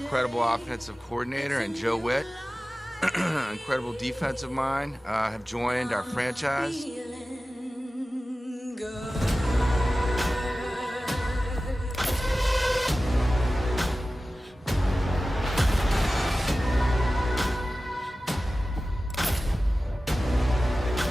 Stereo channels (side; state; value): both; normal; correlation 0.96